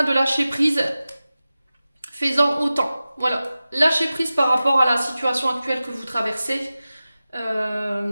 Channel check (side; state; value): both; inverted; correlation -0.95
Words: de lâcher prise. Fais-en autant. Voilà. Lâchez prise par rapport à la situation actuelle que vous traversez.